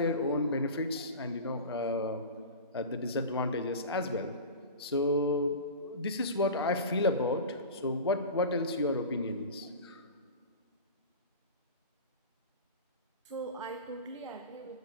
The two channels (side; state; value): both; inverted; correlation -0.32